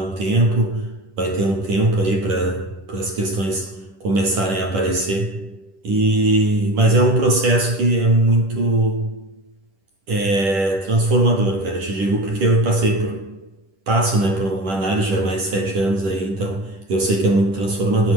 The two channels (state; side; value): late; left; 10 ms